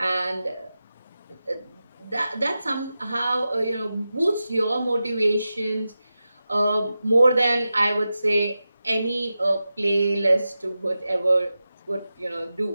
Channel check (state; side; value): inverted; both; correlation -0.92